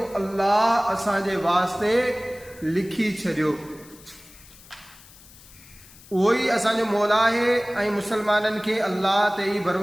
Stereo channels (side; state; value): left; noise; hiss, 22 dB below the sound